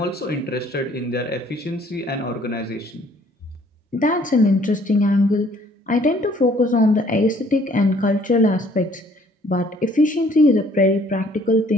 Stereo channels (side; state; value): both; normal; correlation 0.60